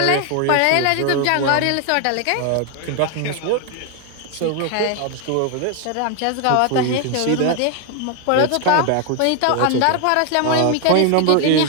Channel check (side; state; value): both; different; correlation 0.00